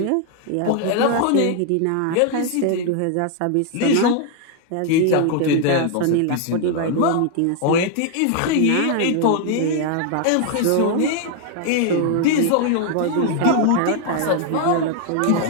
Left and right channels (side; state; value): both; different; correlation 0.00